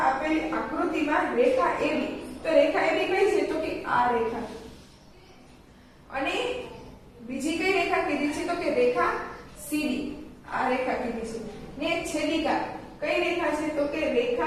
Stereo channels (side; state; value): both; identical; correlation 1.00